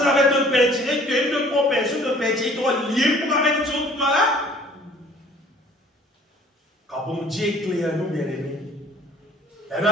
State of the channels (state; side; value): normal; both; correlation 0.54